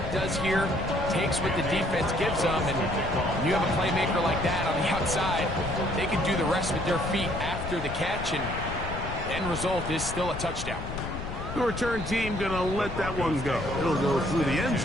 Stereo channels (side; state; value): left; noise; rumble, 7 dB below the sound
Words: does here. Takes what the defense gives them, and when you have a playmaker like that on the outside, they can do the rest with their feet after the catch, and the end result is still a touchdown. The return team going to let that one go. It'll go through the end